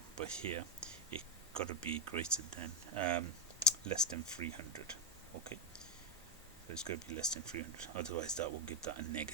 but here it got to be greater than less than 300. Okay, so it's going to be less than 300, otherwise that will give that a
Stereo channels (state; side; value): normal; both; correlation -0.01